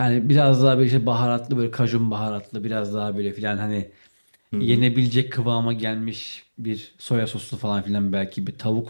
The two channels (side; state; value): both; inverted; correlation -1.00